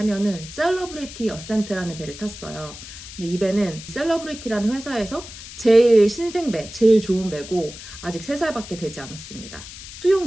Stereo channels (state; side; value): noise; left; hiss, 14 dB below the sound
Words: 셀러브리티 어센트라는 배를 탔어요. 근데 이 배는 셀러브리티라는 회사에서 제일 신생배, 제일 좋은 배고 아직 3살밖에 되지 않았습니다.